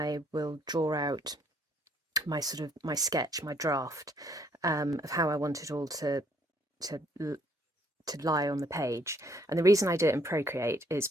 will draw out my sketch, my draft, of how I want it all to lie on the page. And the reason I do it in Procreate is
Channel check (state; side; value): normal; both; correlation 0.66